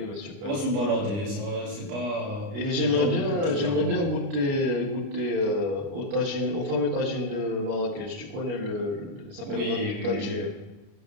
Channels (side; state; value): left; late; 29 ms